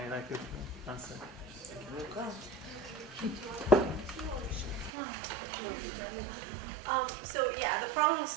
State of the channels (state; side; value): drops out; left; at 4.9 s